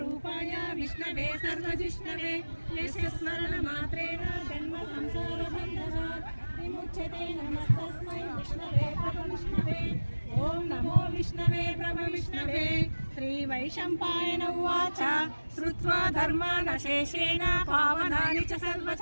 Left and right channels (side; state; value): both; inverted; correlation -1.00